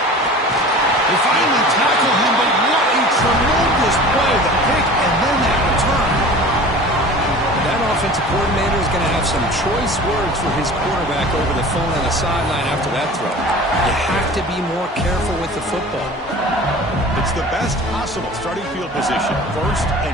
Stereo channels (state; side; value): normal; both; correlation 0.40